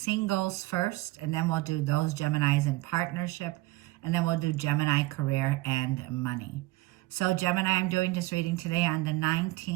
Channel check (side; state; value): left; quieter; 19.6 dB